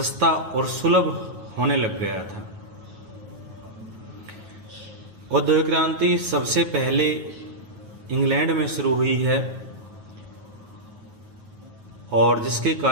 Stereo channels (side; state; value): left; late; 9.3 ms